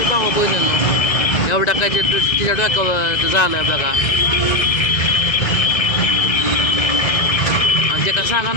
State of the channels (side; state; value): right; late; 1.9 ms